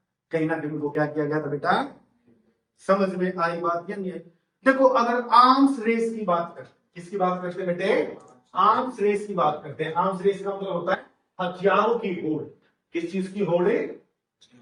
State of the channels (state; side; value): identical; both; correlation 1.00